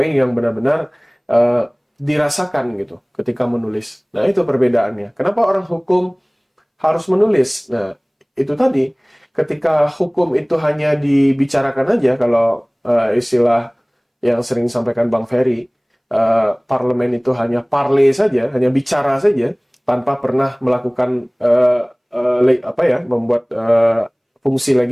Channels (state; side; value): identical; both; correlation 1.00